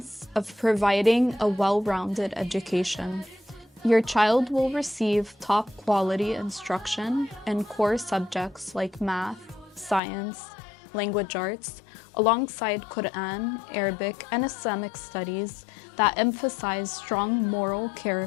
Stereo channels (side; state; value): right; drops out; at 10.0 s